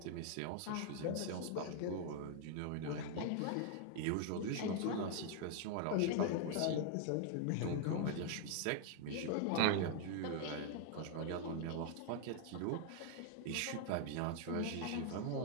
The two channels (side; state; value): both; different; correlation 0.00